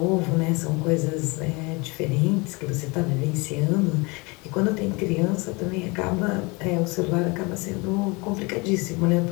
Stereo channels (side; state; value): right; quieter; 27.1 dB